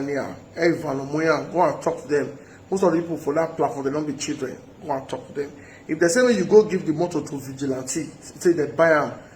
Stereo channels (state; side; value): identical; both; correlation 1.00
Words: there. Every van on where go and talk to them. Most of the people for that platform they don't be children. Go and talk to them. If they say when you go give the motor to vigilante, say they buy them,